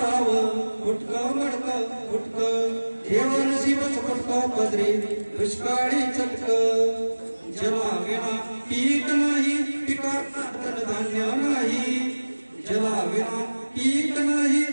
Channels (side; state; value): both; inverted; correlation -1.00